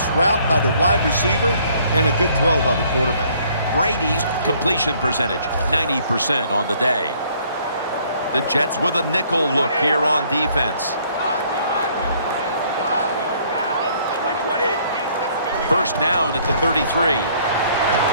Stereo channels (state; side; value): inverted; both; correlation -0.62